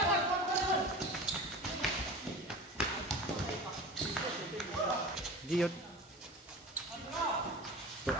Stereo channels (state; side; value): normal; both; correlation 0.34